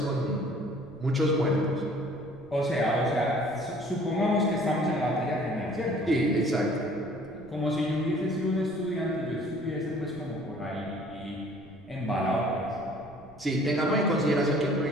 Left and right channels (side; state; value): right; noise; rumble, 23 dB below the sound